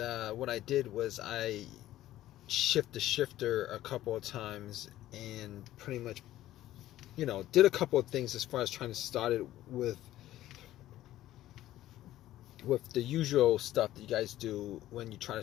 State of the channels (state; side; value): quieter; right; 14.2 dB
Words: what I did was I shifted the shifter a couple of times, and pretty much, did a couple of things as far as trying to start it with the usual stuff that you guys do when you try to